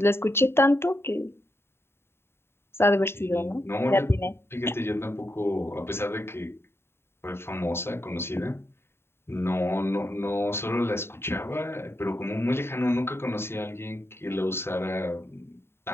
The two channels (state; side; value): late; right; 0.11 ms